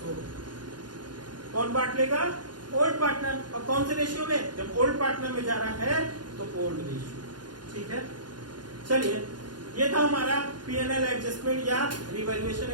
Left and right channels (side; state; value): left; late; 0.71 ms